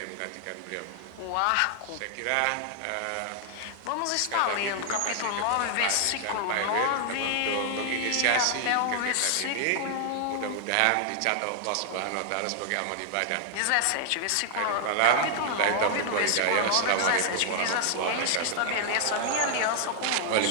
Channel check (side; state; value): both; different; correlation 0.00